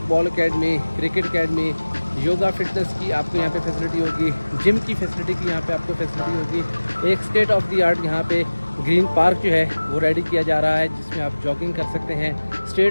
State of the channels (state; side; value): inverted; both; correlation -1.00